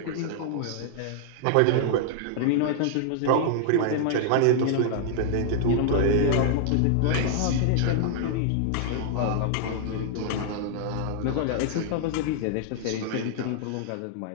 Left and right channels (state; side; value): different; both; correlation -0.01